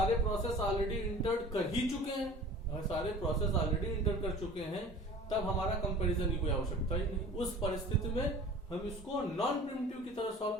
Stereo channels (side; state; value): both; normal; correlation 0.43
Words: प्रोसेस ऑलरेडी इंटर कर ही चुके हैं, अगर सारे प्रोसेस ऑलरेडी इंटर कर चुके हैं, तब हमारा कंपैरिजन की कोई आवश्यकता ही नहीं। उस परिस्थिति में हम इसको नॉन प्रिमिटिव की तरह सॉल्व